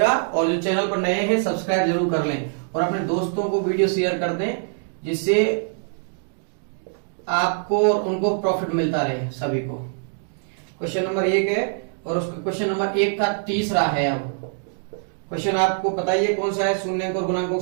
और जो चैनल पर नए हैं सब्सक्राइब जरूर कर लें और अपने दोस्तों को वीडियो शेयर कर दें, जिससे आपको और उनको प्रॉफिट मिलता रहे सभी को। क्वेश्चन नंबर 1 है और उसका क्वेश्चन नंबर 1 का तीसरा है। अब क्वेश्चन आपको पता ही है कौन सा है। शून्यक और गुणांकों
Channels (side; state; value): left; silent; digital silence